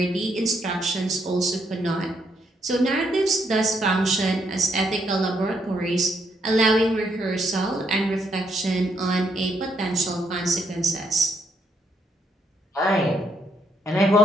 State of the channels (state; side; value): normal; both; correlation 0.74